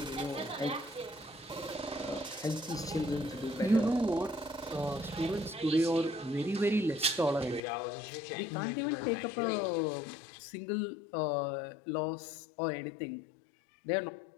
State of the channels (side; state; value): right; drops out; at 7.6 s